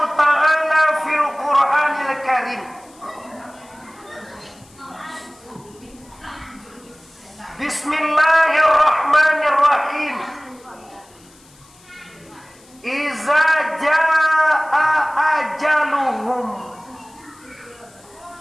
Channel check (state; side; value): noise; left; hiss, 28 dB below the sound